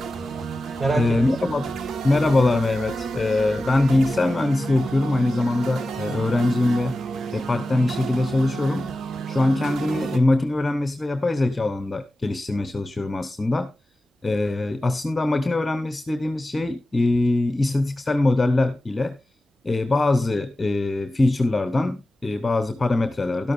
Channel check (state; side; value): normal; both; correlation 0.94